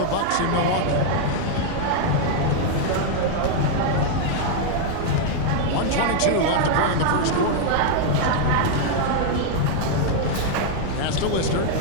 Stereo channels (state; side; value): different; both; correlation 0.00